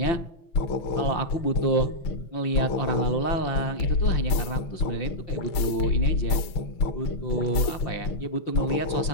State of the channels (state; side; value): late; right; 6.1 ms